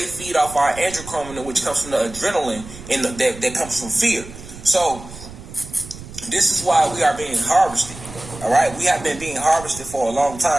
feed off our androchromin, which comes from the adrenaline that comes from fear. So this is why we are being harvested. All right, we have been being harvested for a long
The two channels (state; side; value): noise; right; rumble, 15 dB below the sound